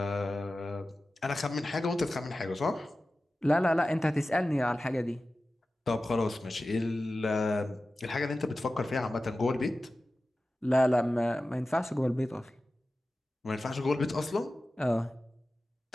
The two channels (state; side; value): normal; both; correlation 0.95